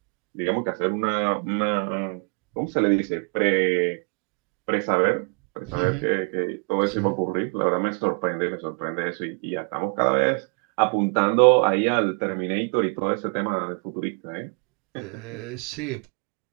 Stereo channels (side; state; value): left; quieter; 39.9 dB